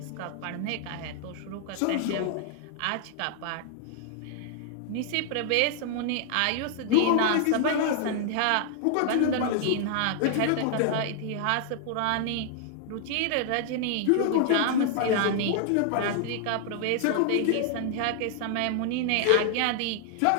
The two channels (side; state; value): both; different; correlation 0.00